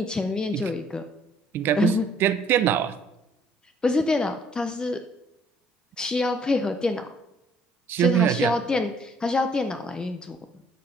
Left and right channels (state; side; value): normal; both; correlation 0.62